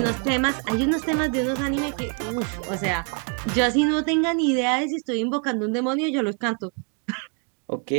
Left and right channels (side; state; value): left; quieter; 38.0 dB